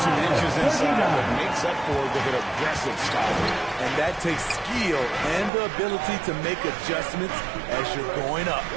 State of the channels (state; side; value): drops out; left; at 5.5 s